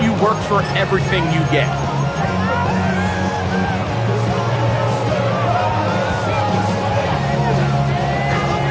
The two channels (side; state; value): both; identical; correlation 1.00